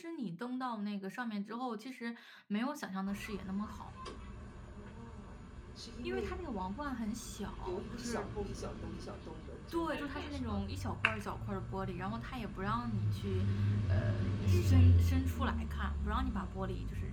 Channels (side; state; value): both; identical; correlation 1.00